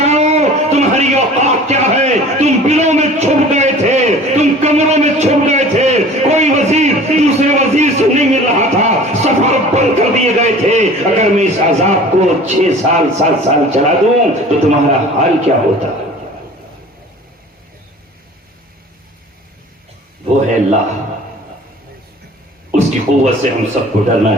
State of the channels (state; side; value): normal; both; correlation 0.44